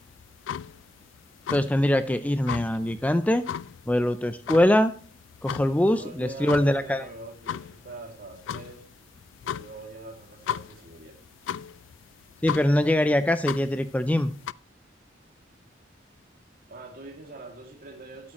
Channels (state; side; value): normal; both; correlation 0.87